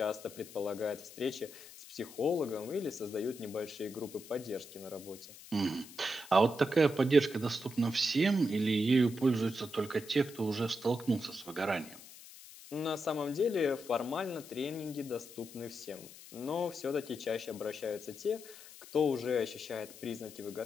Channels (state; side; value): noise; left; hiss, 17 dB below the sound